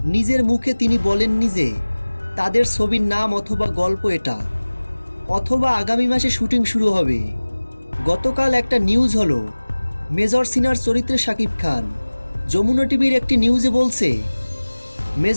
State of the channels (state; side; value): inverted; both; correlation -1.00